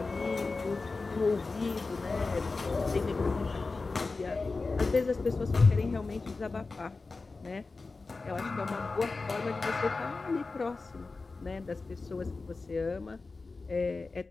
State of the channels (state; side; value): quieter; right; 3.9 dB